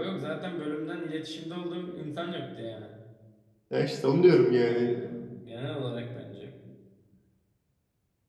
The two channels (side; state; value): both; identical; correlation 1.00